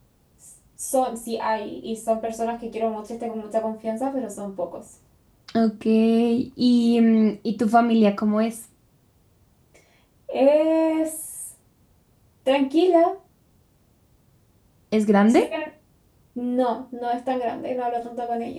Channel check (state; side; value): identical; both; correlation 1.00